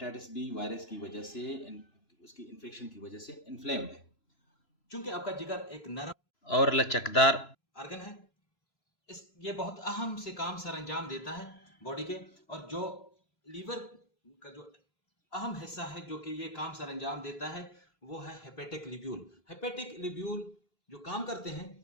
बी वायरस की वजह से, उसकी इन्फेक्शन की वजह से इन्फ्लेम्ड है। चूंकि आपका जिगर एक नरम और लचकदार ऑर्गन है, ये बहुत अहम से काम सरअंजाम देता है बॉडी के। और जो लीवर का जो अहम हिस्सा है जो कि ये काम सरअंजाम देता है, वो है हेपेटिक लिब्यूल। हेपेटिक लिब्यूल जो काम करते हैं,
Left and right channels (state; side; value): late; right; 3.0 ms